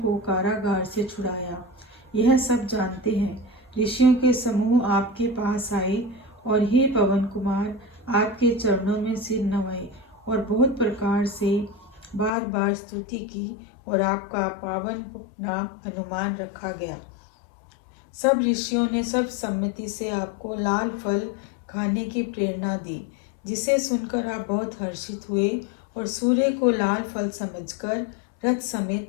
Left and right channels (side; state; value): right; drops out; at 12.3 s